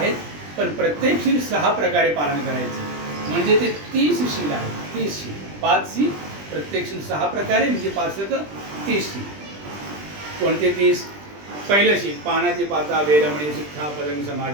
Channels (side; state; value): left; late; 20 ms